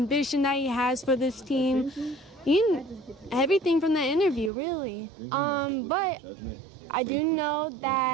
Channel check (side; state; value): left; drops out; at 4.5 s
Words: that he has for this team. Everything from that interview, really. But I do know